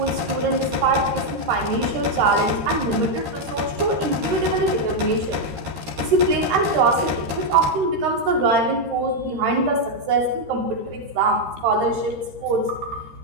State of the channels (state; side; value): late; left; 13 ms